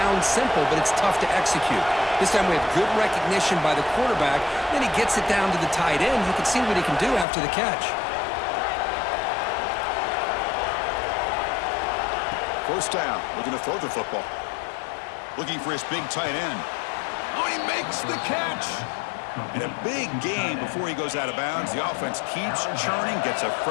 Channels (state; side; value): drops out; right; at 7.2 s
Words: simple, but it's tough to execute. This time we have good recognition by the quarterback. Then he gets it down to the tight end. You can see what he can do after the catch. First down, looking to throw the football. Looking for his big tight end. Oh, he makes the catch. And a big gain before he goes out of bounds. The offense keeps churning, gets a